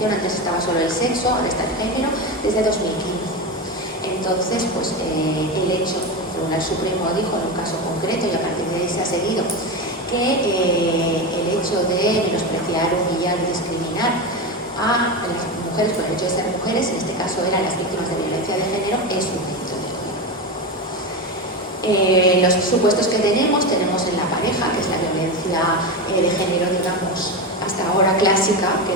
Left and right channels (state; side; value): normal; both; correlation 0.18